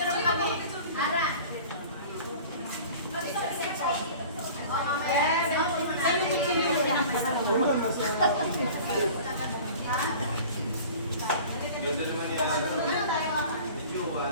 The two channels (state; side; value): inverted; both; correlation -0.42